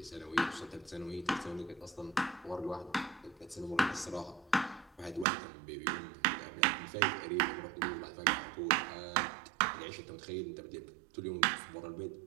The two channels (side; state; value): left; drops out; at 5.2 s